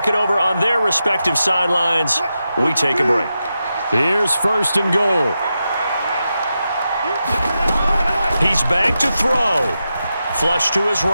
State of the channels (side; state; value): both; inverted; correlation -0.89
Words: it over on their respective sidelines, we take a break. Here's 1st and goal. He's back to throw. Flush to his